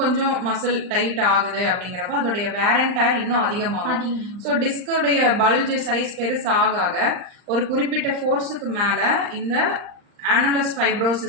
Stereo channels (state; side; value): late; left; 39 ms